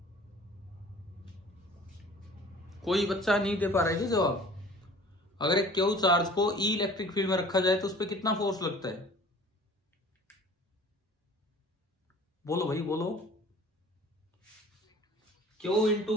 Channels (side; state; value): both; normal; correlation 0.47